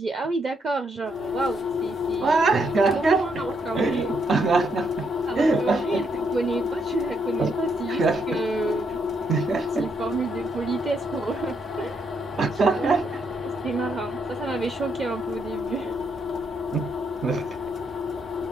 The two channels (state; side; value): normal; both; correlation 0.76